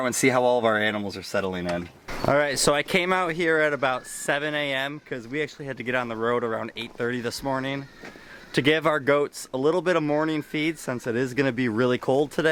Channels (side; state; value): both; identical; correlation 1.00